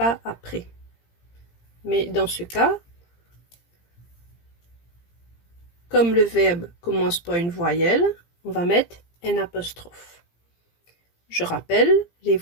après. Mais dans ce cas, comme le verbe commence par une voyelle, on va mettre un apostrophe. Je rappelle, les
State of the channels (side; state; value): right; late; 17 ms